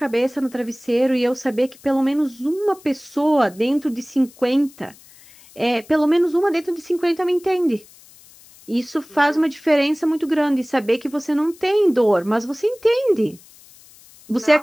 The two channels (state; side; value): noise; left; hiss, 24 dB below the sound